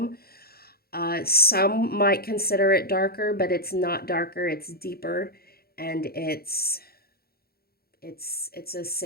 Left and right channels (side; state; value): right; late; 0.45 ms